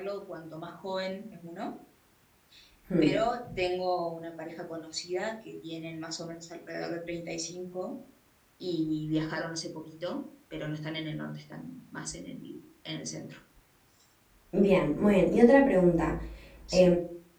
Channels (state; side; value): identical; both; correlation 1.00